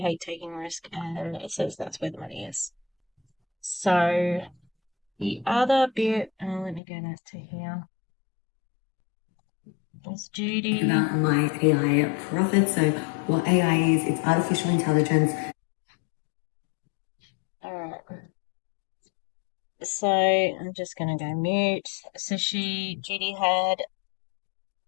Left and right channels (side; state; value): right; drops out; at 6.8 s